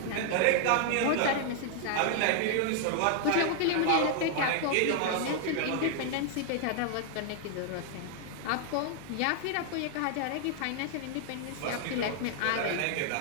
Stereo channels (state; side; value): different; both; correlation 0.00